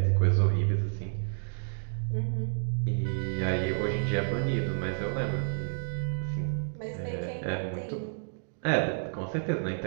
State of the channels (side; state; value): left; silent; digital silence